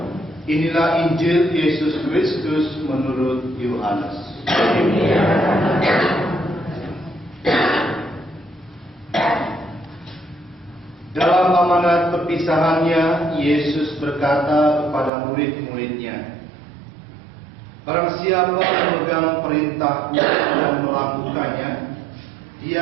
Inilah Injil Yesus Kristus menurut Yohanes. Dalam amanat perpisahannya, Yesus berkata kepada murid-muridnya, "Barang siapa memegang perintahku dan melakukannya,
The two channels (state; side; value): drops out; left; at 15.1 s